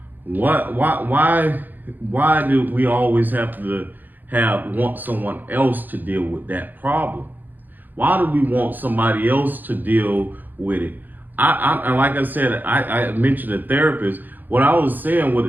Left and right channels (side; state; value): left; late; 0.086 ms